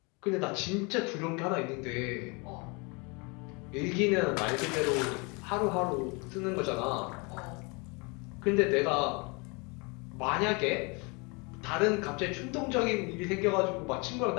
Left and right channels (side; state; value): right; quieter; 30.0 dB